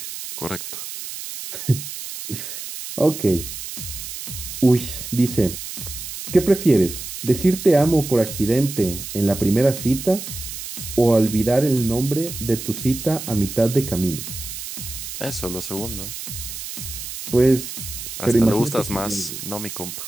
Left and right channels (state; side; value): noise; right; hiss, 9 dB below the sound